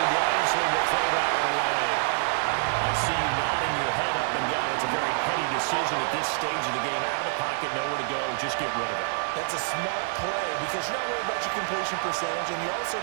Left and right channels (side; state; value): left; silent; digital silence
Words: wisely will throw that one away. I see you nodding your head up and down. It's a very heady decision at this stage of the game. Out of the pocket, nowhere to go. Just get rid of it. That's a smart play because you're not worried about your completion percentage, and you're also